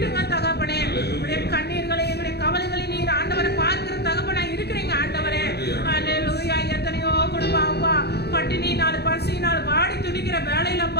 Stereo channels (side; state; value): right; late; 0.48 ms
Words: தகப்பனே. உடைய கண்ணீர்களை எங்களுடைய கவலைகளை நீர் ஆண்டவரை பார்க்கிற தகப்பனா இருக்கிறீங்க ஆண்டவரே. அல்லேலூயா. எத்தனையோ குடும்பம் அப்பா பட்டினியினால் பசியினால் வாடி துடிக்கிற